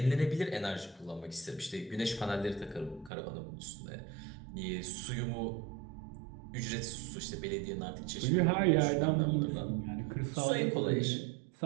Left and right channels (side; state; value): left; drops out; at 3.1 s